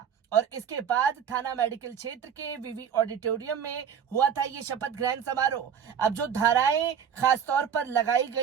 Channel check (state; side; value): quieter; left; 7.9 dB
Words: और इसके बाद थाना मेडिकल क्षेत्र के विवि ऑडिटोरियम में हुआ था ये शपथ ग्रहण समारोह। अब जो धाराएं खास तौर पर लगाई